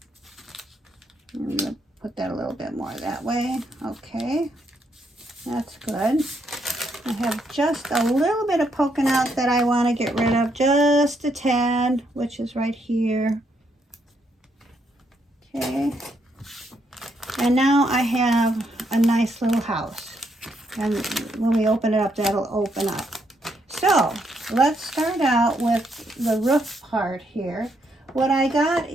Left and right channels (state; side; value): normal; both; correlation 0.76